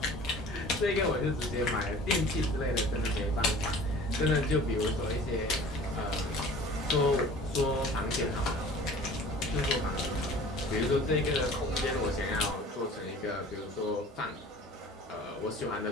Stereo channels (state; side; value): normal; both; correlation 0.45